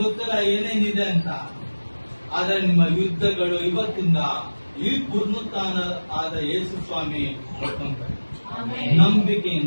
ಗೊತ್ತಿಲ್ಲ ಏನೇನಿದೆ ಅಂತ, ಆದ್ರೆ ನಿಮ್ಮ ಯುದ್ಧಗಳು ಇವತ್ತಿಂದ ಈ ಪುನರುತ್ಥಾನ ಆದ ಯೇಸು ಸ್ವಾಮಿ ಕೊಡ್ಕೊಂತಾರೆ.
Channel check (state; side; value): inverted; both; correlation -1.00